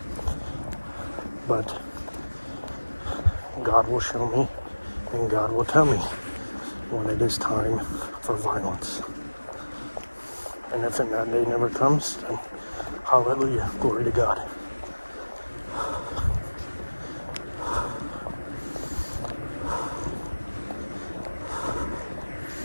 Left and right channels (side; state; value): both; inverted; correlation -1.00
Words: But God will show me, and God will tell me when it is time for violence. And if that day never comes, then hallelujah, glory to God.